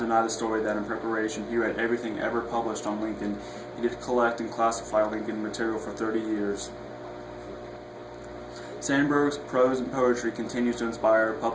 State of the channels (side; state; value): both; identical; correlation 1.00